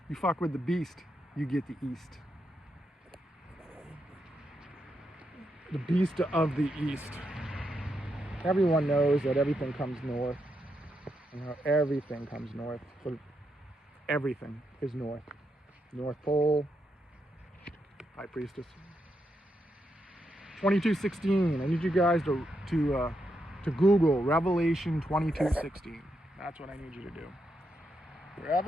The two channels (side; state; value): both; normal; correlation 0.82